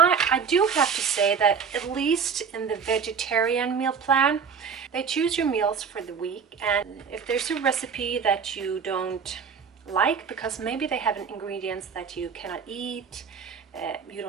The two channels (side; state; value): left; quieter; 6.2 dB